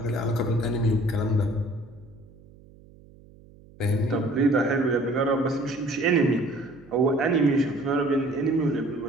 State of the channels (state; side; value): noise; right; hum, 24 dB below the sound